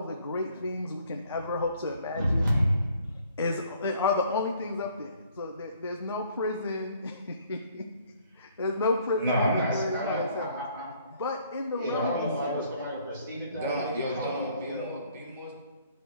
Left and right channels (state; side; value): inverted; both; correlation -0.61